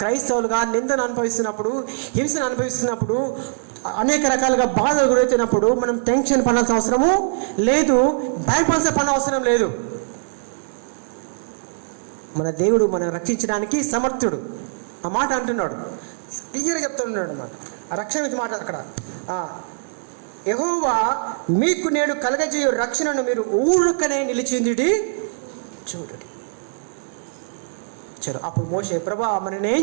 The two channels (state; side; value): silent; left; digital silence